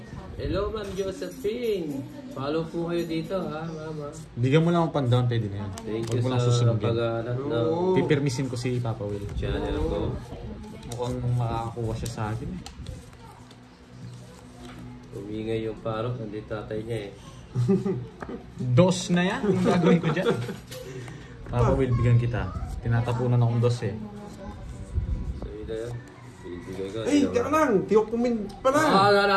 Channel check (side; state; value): both; identical; correlation 1.00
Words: Hello Ma'am Josephine! Follow po kayo dito ha, Mama. Bigyan mo lang ang pan-down, pwede na yan. Thank Huwag you mo lang sa susunugin. pag-aanat ng Pipirmisin ko si Papa Will. channel ko. Mukhang makakakuha siya sa akin eh. Umingay yung parok, nandito tatay niya eh. Dos na yan. Yung gagawin ko dyan. Papa Will, bigyan kita. Tinatapunan akong dos eh. So ito yan. Bibigay ko. Ay, teka lang! Tiyok kumin pala!